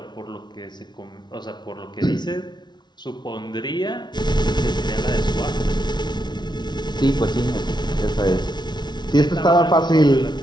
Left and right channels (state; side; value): late; right; 0.20 ms